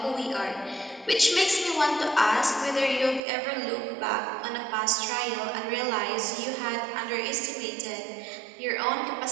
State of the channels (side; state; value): left; drops out; at 3.2 s